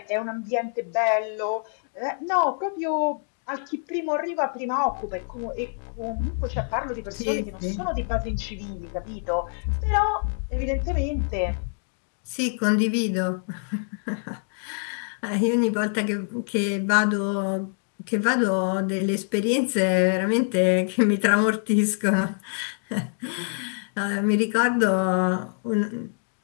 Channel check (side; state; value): right; silent; 61 dB below the other